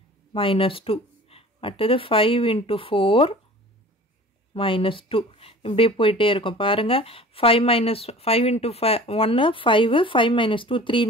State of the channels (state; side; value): normal; both; correlation 0.43